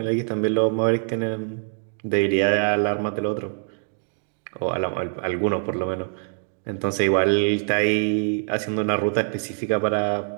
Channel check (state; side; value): silent; left; digital silence